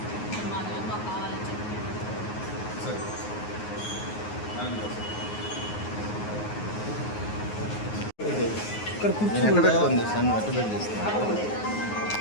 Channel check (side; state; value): right; late; 9.5 ms